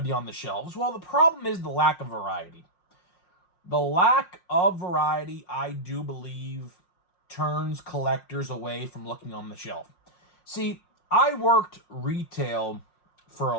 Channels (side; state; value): right; late; 5.6 ms